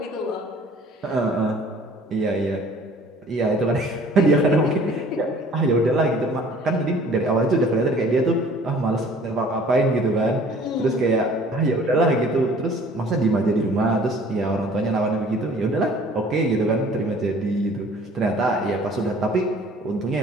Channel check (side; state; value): both; normal; correlation 0.52